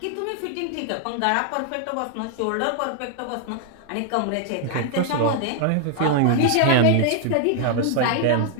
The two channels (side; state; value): both; different; correlation 0.00